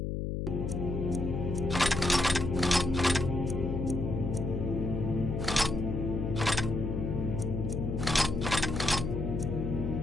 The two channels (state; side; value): noise; left; hum, 2 dB below the sound